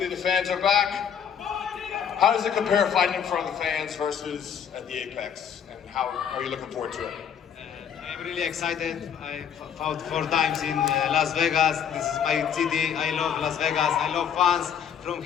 the fans are back. How does it compare fighting in front of the fans versus at the Apex? And how are you looking forward to it? I'm really excited. I fought 4 times in Las Vegas. This is my city. I love Las Vegas. I love fans. From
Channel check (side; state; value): right; quieter; 8.2 dB